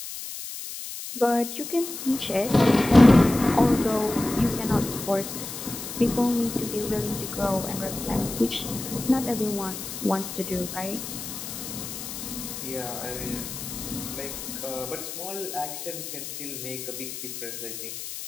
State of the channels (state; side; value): noise; left; hiss, 8 dB below the sound